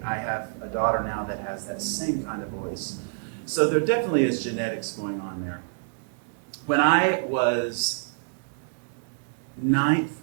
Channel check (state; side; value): silent; left; 60 dB below the other